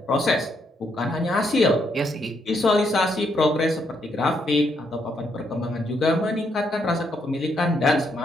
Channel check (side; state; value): both; normal; correlation 0.75